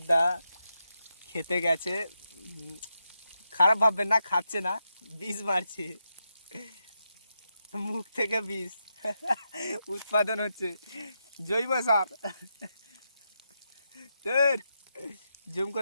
খেতে গেছে। খারাপ ভাববেন না, খাচ্ছে না, বীজ মারছে, মুখ থেকে বীজ উৎপাদন হচ্ছে, জৈব সার। তোর জুম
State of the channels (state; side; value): inverted; both; correlation -0.85